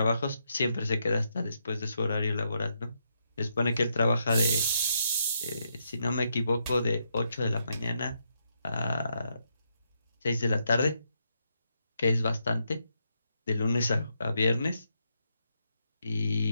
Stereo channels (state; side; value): inverted; both; correlation -0.80